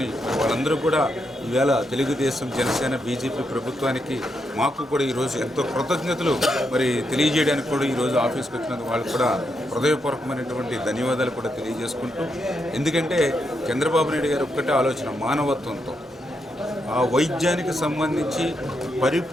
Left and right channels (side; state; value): both; normal; correlation 0.82